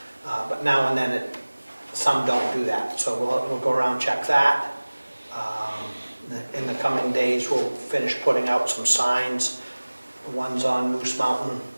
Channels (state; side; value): inverted; both; correlation -1.00